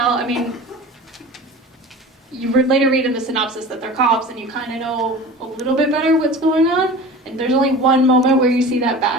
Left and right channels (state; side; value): normal; both; correlation 0.37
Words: I mean, you later read in the synopsis that they're cops and you kind of know a little bit better what's going on. And there's only one moment where you see that